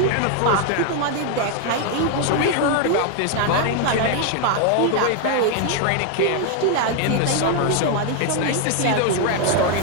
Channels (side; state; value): both; different; correlation 0.00